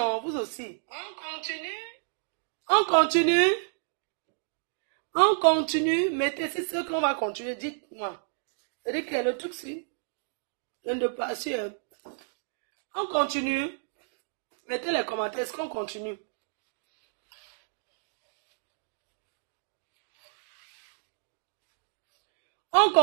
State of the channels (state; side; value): silent; left; digital silence